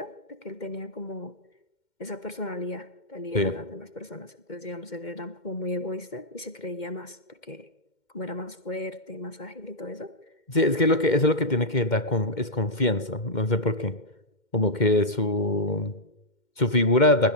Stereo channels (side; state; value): right; late; 2.1 ms